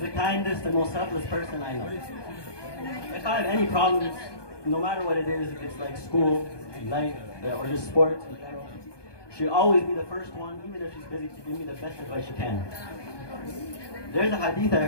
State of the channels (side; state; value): right; late; 1.2 ms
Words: the kindest and most selfless person I know. If I have any problems, no matter what it is, if it's like school, life, or just sports in general, she'll always be the first one, even if she's busy, to give me the best advice she can. There's a hadith I